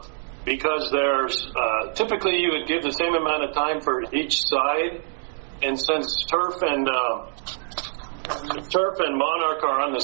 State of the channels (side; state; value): left; silent; digital silence